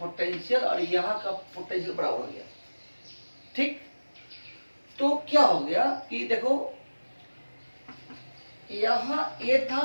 पोटेंशियल और यहाँ का पोटेंशियल बराबर हो गया, ठीक। तो क्या हो गया कि देखो यहाँ ए था,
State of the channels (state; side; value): inverted; both; correlation -1.00